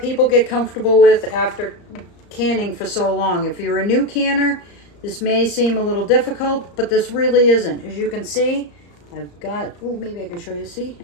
people get comfortable with after canning for so long. If you're a new canner, this may seem a little difficult, but this really isn't. As you can see, I've got, maybe I can show you. See,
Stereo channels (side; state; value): right; late; 34 ms